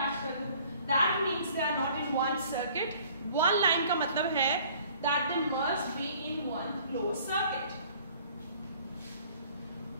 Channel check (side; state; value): both; inverted; correlation -0.54